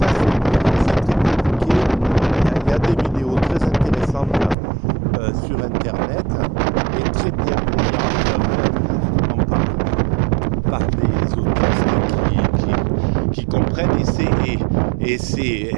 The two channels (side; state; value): left; drops out; at 4.5 s